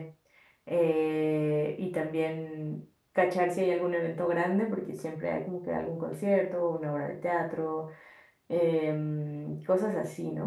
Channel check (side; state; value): both; identical; correlation 1.00